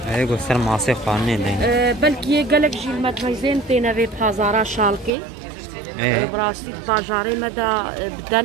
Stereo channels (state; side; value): drops out; left; at 5.1 s